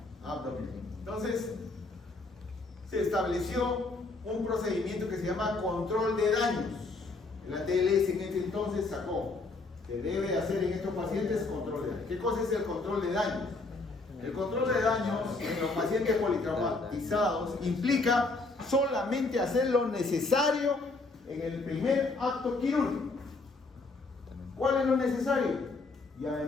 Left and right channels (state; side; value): quieter; right; 3.5 dB